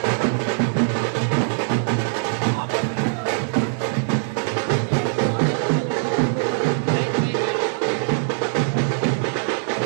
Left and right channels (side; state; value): left; silent; 63 dB below the other